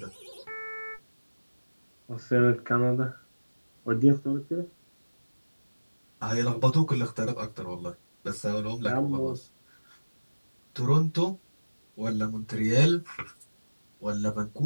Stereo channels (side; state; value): both; inverted; correlation -1.00